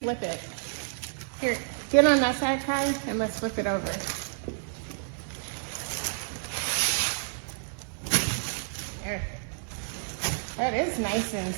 Flip it. Here, get on that side, Kai, and let's flip it over. There. That is nice and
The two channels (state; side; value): silent; left; digital silence